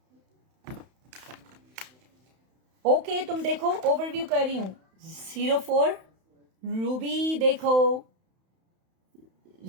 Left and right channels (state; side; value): late; left; 31 ms